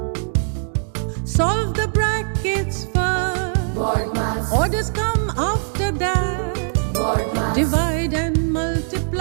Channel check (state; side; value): silent; left; 62 dB below the other